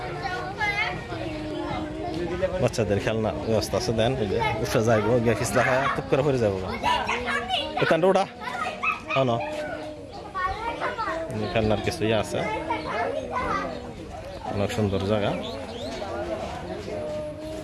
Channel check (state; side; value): identical; both; correlation 1.00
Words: বাচ্চাদের খেলনা ব্যবস্থা আছে। দেন এই যে উঠে যাইব, গিয়ে খিসলা খায় টুক করে পরে যাবো। এখানটা ওটা না, খেলনার কিছু ইয়ে আছে, অনেক সুন্দর জায়গা।